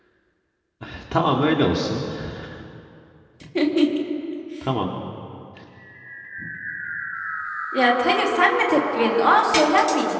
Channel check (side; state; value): both; identical; correlation 1.00